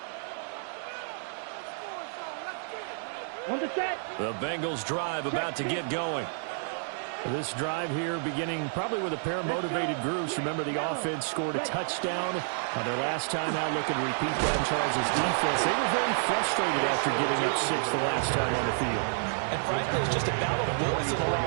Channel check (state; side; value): silent; left; digital silence